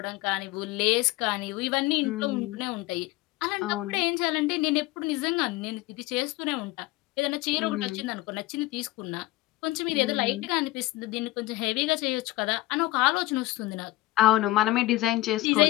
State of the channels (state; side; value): quieter; right; 18.4 dB